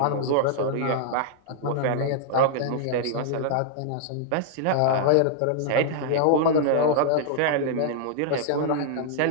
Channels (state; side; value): different; both; correlation -0.01